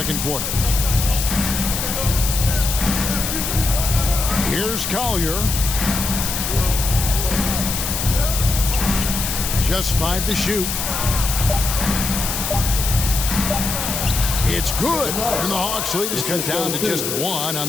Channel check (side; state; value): left; noise; hiss, 3 dB below the sound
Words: quarter. Here's Collier. Just 5 to shoot. It's good, and the Hawks lead is cut down to just 1 on